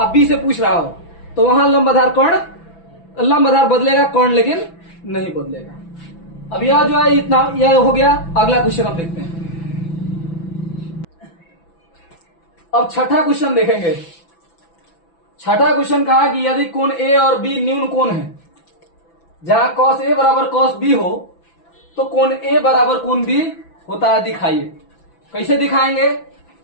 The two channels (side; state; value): right; late; 6.0 ms